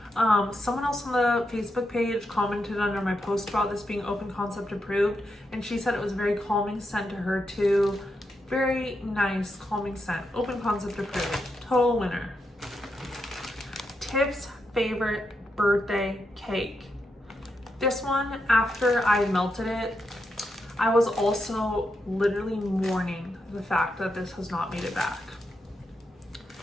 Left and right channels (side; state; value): both; normal; correlation 0.84